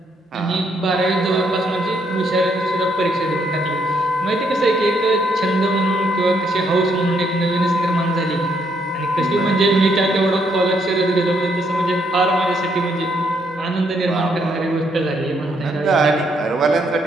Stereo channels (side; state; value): both; normal; correlation 0.73